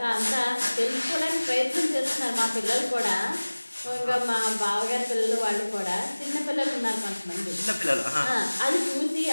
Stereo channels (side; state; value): both; inverted; correlation -1.00